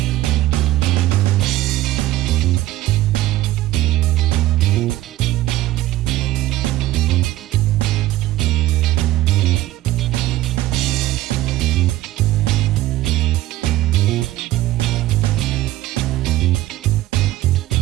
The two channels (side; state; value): left; quieter; 15.6 dB